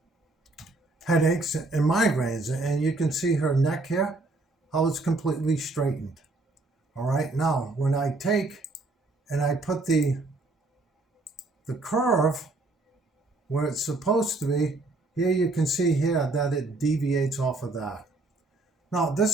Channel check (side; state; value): left; quieter; 3.1 dB